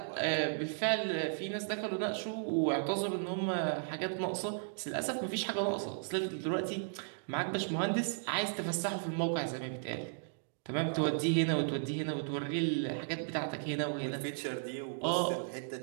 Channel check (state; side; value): silent; left; digital silence